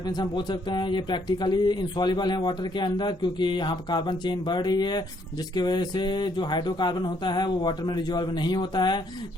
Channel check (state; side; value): normal; both; correlation 0.69